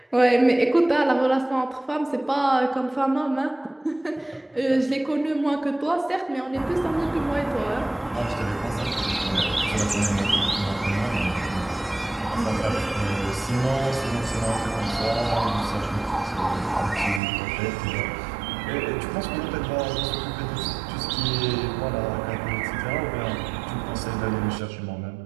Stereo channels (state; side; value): drops out; left; at 17.2 s